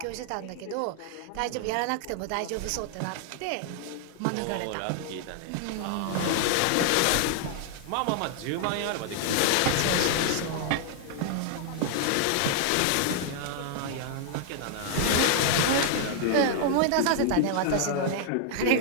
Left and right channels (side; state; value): both; different; correlation 0.00